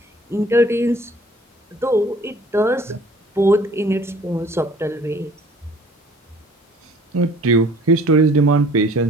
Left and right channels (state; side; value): normal; both; correlation 0.52